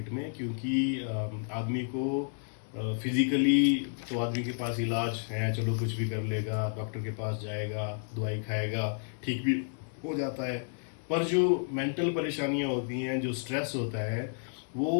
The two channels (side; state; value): right; silent; 57 dB below the other